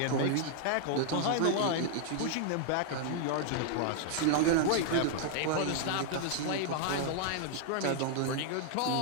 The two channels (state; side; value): different; both; correlation 0.00